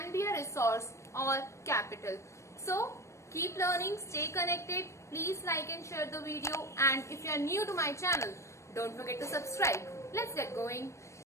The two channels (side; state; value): right; late; 0.14 ms